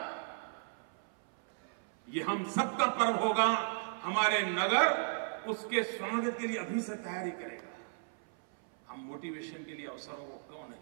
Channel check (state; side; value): silent; left; 54 dB below the other